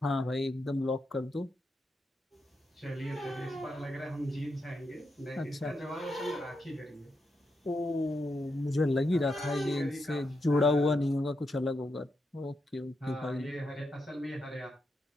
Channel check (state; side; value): normal; both; correlation 0.84